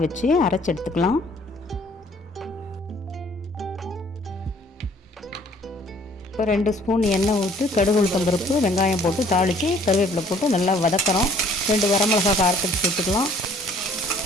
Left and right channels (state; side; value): normal; both; correlation 0.58